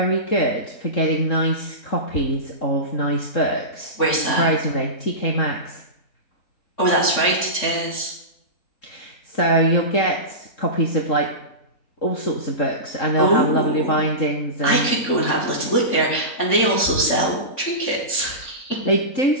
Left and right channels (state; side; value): late; right; 3.5 ms